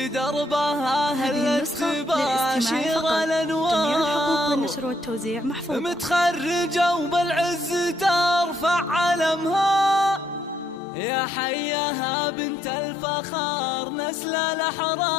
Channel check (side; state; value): right; drops out; at 10.8 s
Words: دربها هلت تباشر الأنوار. جميع الحقوق بالنشر والتوزيع محفوظة. متخرجة وبالعز ترفع علمها يا حياها بنت الفخار نسل